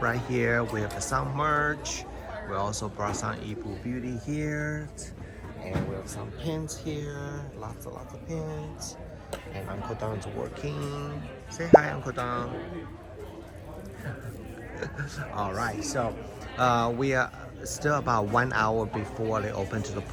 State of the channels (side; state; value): both; identical; correlation 1.00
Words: right here. We have some merch. We also brought some Yibu Beauty here. And we have some pins here. Lots of pins. And Uncle Don's working. Say hi, Uncle Don. Alright, so we are still about 1 hour before they open to the